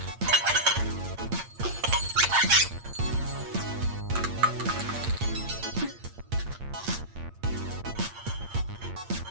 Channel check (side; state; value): left; late; 8.7 ms